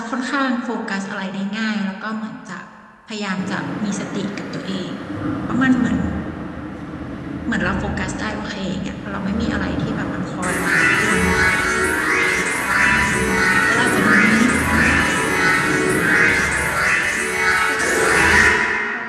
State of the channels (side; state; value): both; identical; correlation 1.00